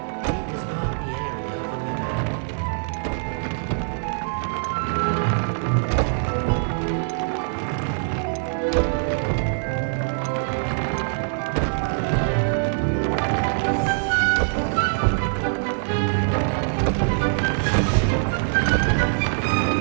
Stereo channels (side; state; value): left; silent; digital silence